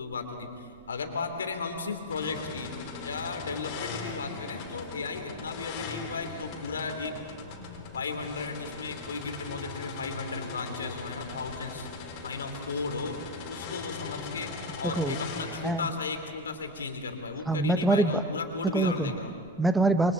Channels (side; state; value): right; noise; rumble, 25 dB below the sound